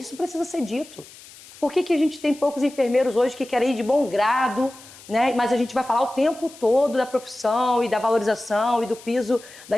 precisa ser dito. Por que a gente tem poucos enfermeiros hoje que querem ir de bom grado, né? Mas a gente vai falar o tempo todo da profissão e da valorização e do piso da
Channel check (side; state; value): left; noise; hiss, 20 dB below the sound